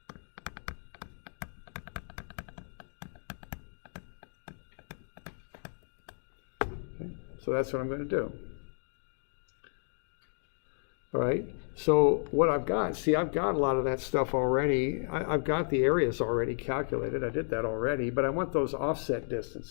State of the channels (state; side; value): silent; right; 56 dB below the other